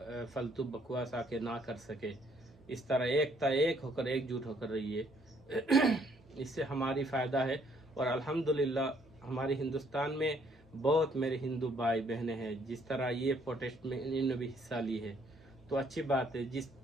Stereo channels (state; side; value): normal; both; correlation 0.66